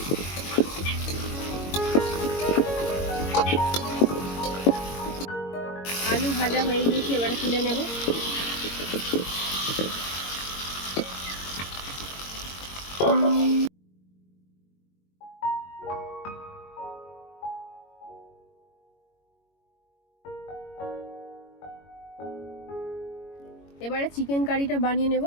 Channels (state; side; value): late; right; 22 ms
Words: আলু ভাজা হয়ে গিয়েছে, এবারে তুলে নেব। এবারে চিকেন কারিটা বানিয়ে নেব,